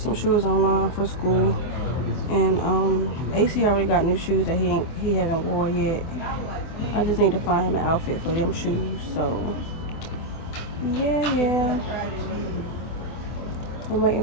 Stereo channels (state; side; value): late; right; 24 ms